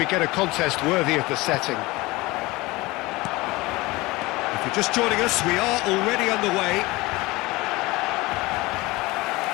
get a contest worthy of the setting. If you're just joining us, we are already underway.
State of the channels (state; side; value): quieter; right; 21.6 dB